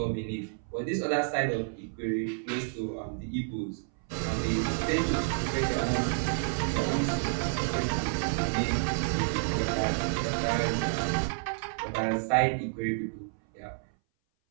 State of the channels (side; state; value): left; silent; 58 dB below the other